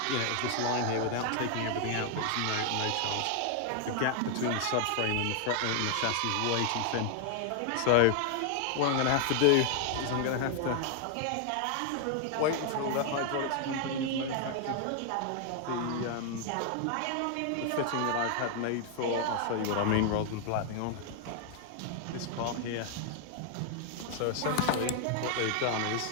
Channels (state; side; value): different; both; correlation 0.00